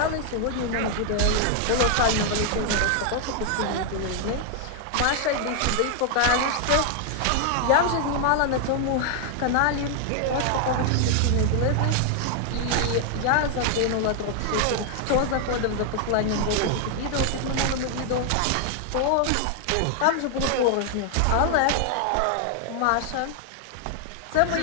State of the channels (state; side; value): different; both; correlation 0.00